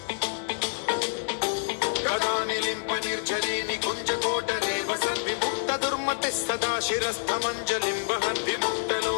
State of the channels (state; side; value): silent; right; digital silence